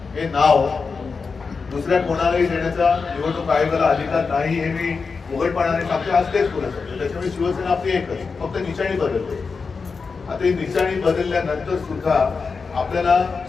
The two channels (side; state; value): right; quieter; 4.9 dB